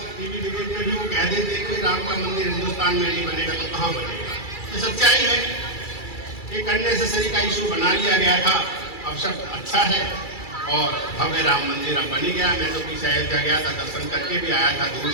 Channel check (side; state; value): right; late; 2.3 ms